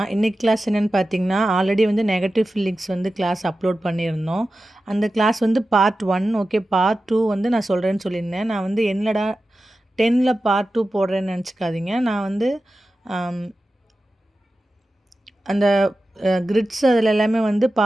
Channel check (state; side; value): normal; both; correlation 0.94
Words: இன்னைக்கு class என்னென்னு பார்த்தீங்கன்னா, ஆல்ரெடி வந்து நெகட்டிவ் ஃபீலிங்ஸ் வந்து கிளாஸ் அப்லோட் பண்ணியிருந்தோம். அந்த கிளாஸ் வந்து பார்ட் 1 ஓகே. பார்ட் 2 வந்து நான் சொல்கிறேன்னு சொல்லியிருந்தேன். நான் வந்து என்னடா 10ல் பார்ட் 2 போடுறேன்னு நினச்சிக்காதீங்க. நான் வந்து அந்த கிரிட்ஸ் அதில் எல்லாமே வந்து